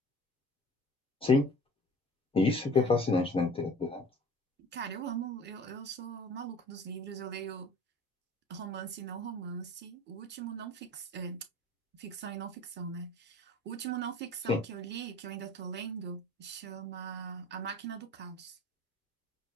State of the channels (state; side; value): normal; both; correlation 0.46